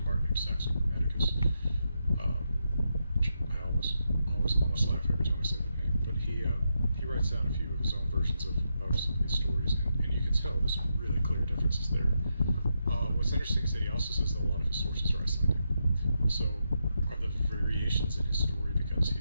named Saxo Grammaticus. I almost laugh every time I say the name, but he writes down a few of his own versions of some of these stories, and you can tell there's some really clear differences there. What's interesting is that he also says that a lot of his sources are Icelandic. So are the variations in his story because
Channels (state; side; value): inverted; both; correlation -0.83